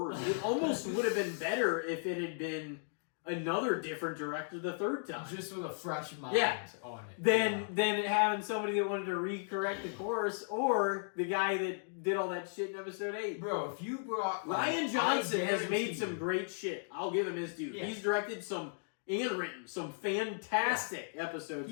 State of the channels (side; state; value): right; silent; digital silence